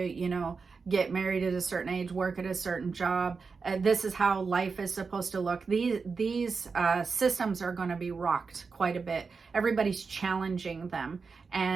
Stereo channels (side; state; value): left; quieter; 4.9 dB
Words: know, get married at a certain age, work at a certain job. This is how life is supposed to look. These systems are going to be rocked quite a bit. Everybody's challenging them.